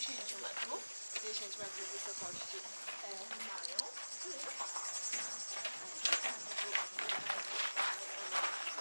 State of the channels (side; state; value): both; inverted; correlation -1.00